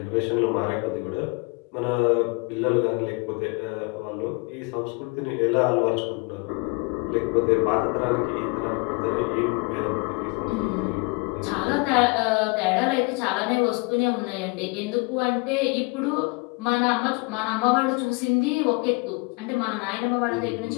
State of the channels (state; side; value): quieter; right; 29.5 dB